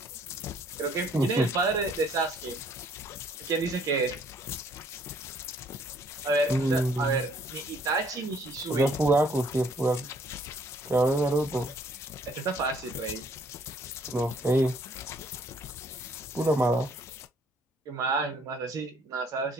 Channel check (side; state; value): both; normal; correlation 0.63